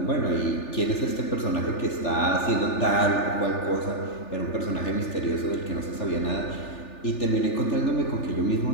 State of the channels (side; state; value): right; late; 3.4 ms